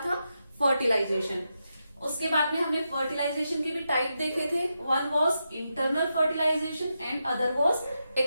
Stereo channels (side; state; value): both; inverted; correlation -0.86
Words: फर्टिलाइजेशन। उसके बाद में हमने फर्टिलाइजेशन के भी टाइप देखे थे। One was internal fertilization and other was